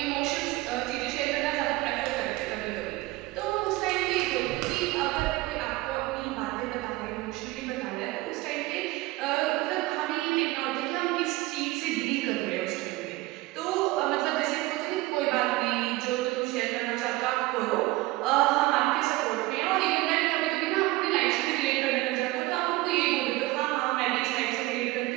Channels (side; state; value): left; quieter; 19.9 dB